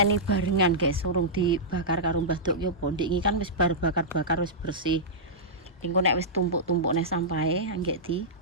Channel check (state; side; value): normal; both; correlation -0.13